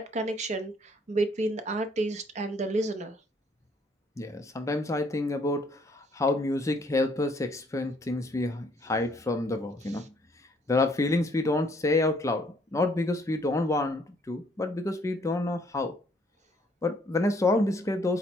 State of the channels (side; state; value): both; normal; correlation 0.65